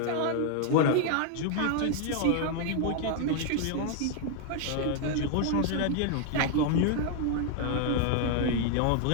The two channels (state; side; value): different; both; correlation 0.00